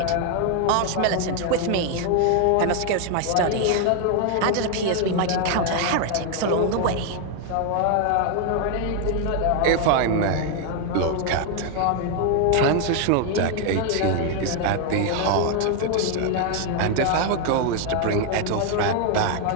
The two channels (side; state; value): both; different; correlation 0.01